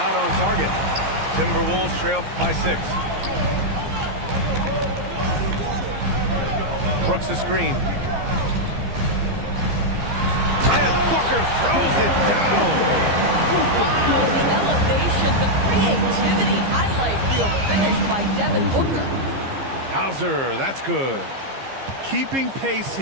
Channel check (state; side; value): late; left; 15 ms